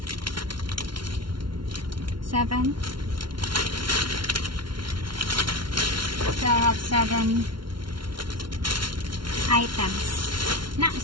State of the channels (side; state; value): left; late; 0.73 ms